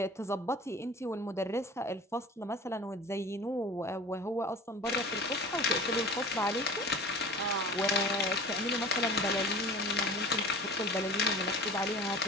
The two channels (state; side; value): normal; both; correlation 0.39